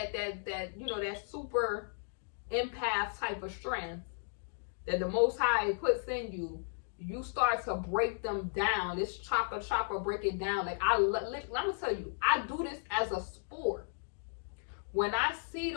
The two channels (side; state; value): right; silent; digital silence